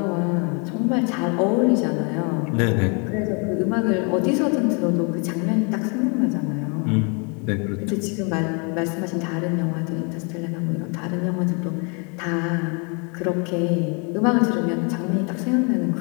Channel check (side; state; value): right; quieter; 34.7 dB